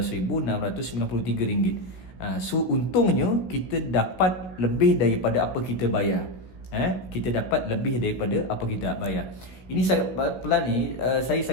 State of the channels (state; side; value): late; right; 16 ms